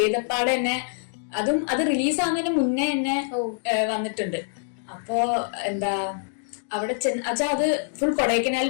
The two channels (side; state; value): right; silent; digital silence